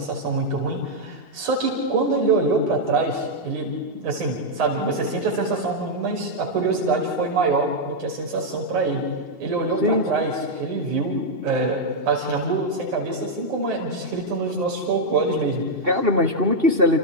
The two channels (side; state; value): left; late; 2.7 ms